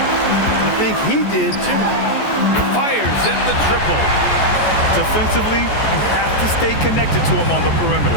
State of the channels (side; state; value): right; late; 14 ms